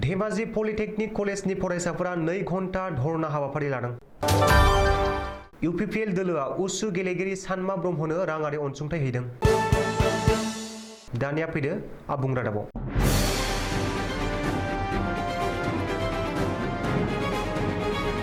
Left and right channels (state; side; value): identical; both; correlation 1.00